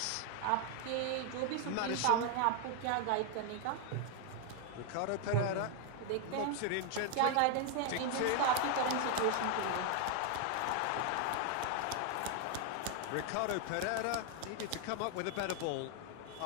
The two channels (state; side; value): different; both; correlation 0.00